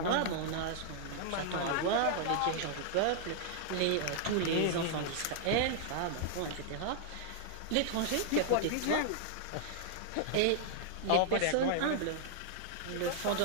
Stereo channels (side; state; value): both; different; correlation -0.01